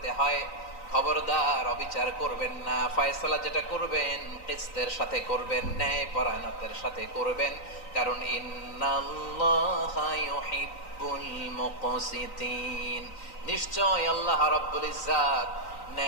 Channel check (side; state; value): right; late; 3.9 ms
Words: হয়, খবরদার অবিচার করবেন না। ফয়সালা যেটা করবেন কিসতের সাথে করবেন, ন্যায় পরায়ণতার সাথে করবেন, কারণ ইন্নাল্লাহা ইউহিব্বুল মুকসিতিন, নিশ্চয় আল্লাহ রাব্বুল ইজ্জাত